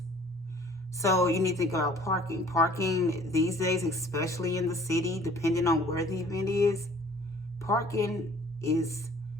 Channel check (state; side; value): normal; both; correlation 0.53